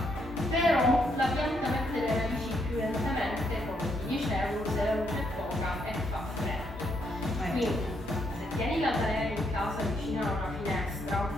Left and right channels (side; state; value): both; normal; correlation 0.75